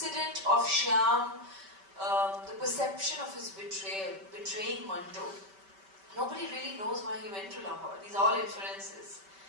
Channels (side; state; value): left; late; 5.2 ms